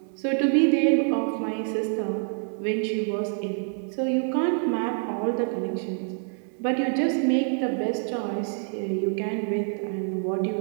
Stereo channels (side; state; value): left; silent; 56 dB below the other